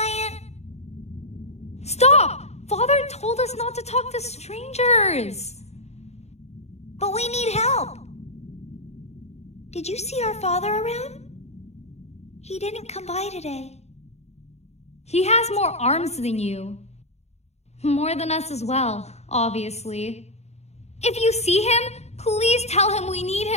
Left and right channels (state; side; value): late; right; 0.31 ms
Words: Stop! Father told us not to talk to strangers. But we need help. Did you see our father around? He didn't come by today. He has more arms than you. More than us as well, obviously. If you see him, please tell him we need